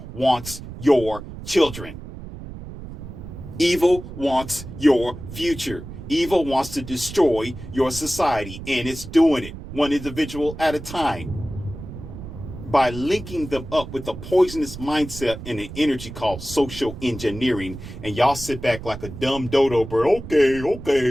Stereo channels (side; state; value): right; noise; rumble, 12 dB below the sound